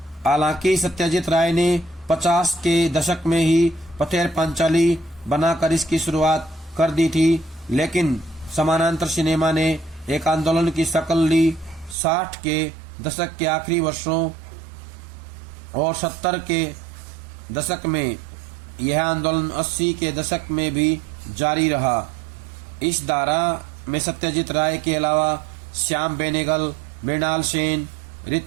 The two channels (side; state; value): left; drops out; at 12.0 s